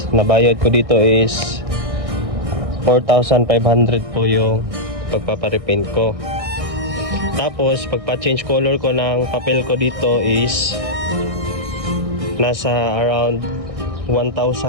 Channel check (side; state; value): left; late; 1.6 ms